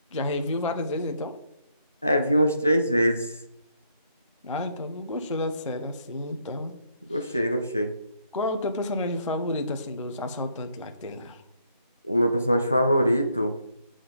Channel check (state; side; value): inverted; both; correlation -0.72